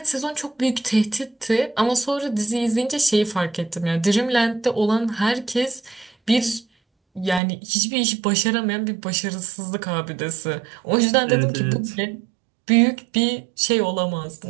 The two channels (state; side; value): drops out; left; at 7.4 s